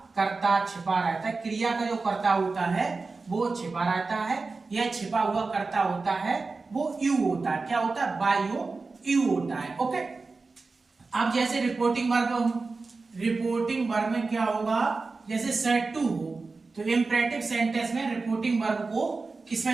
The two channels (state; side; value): quieter; left; 4.0 dB